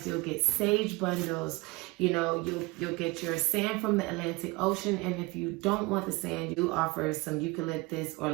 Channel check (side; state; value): left; quieter; 24.1 dB